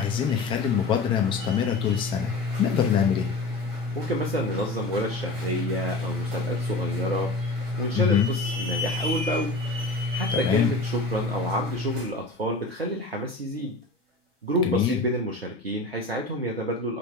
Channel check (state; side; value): quieter; right; 3.2 dB